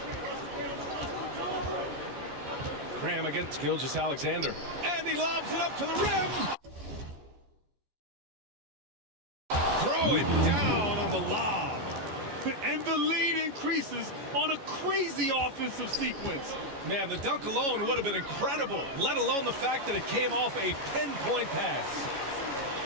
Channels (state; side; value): late; left; 14 ms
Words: Graham against Gilgeous-Alexander. And he lobs it up to the rim. Throw it down on the lob. And the lead increases on a crazy offensive sequence. Man, the dunk alone would have been incredible, let alone the fact that it came off a pinpoint pass.